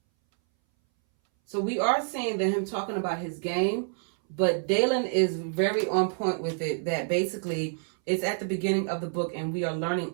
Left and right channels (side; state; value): left; silent; 59 dB below the other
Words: So we are seeing that him talking about his game, But Dalen is very on point with it, that basically it's at the beginning of the book and we are learning